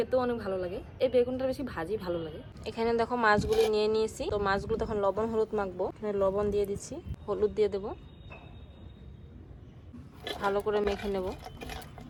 অনেক ভালো লাগে। এই বেগুনটা বেশি ভাজি ভালো লাগে। এখানে দেখো মাছগুলি নিয়ে নিয়েছি। তো মাছগুলো তখন লবণ হলুদ মাখবো। এখানে লবণ দিয়ে দিচ্ছি, হলুদ দিয়ে দেবো, ভালো করে মেখে নেব।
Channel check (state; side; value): identical; both; correlation 1.00